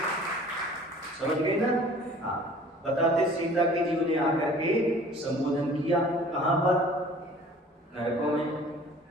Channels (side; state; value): both; normal; correlation 0.49